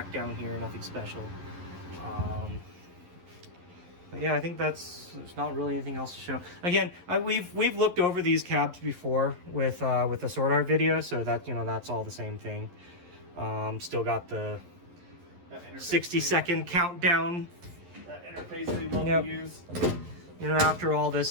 down here. Nothing special. But yeah, I think there's not really anything else to show. Again, we've looked over these cabs before with the Sword Art video, so that that's all the same thing. Still got the 60-second countdown. That interface they love to use. After all this,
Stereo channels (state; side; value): late; left; 11 ms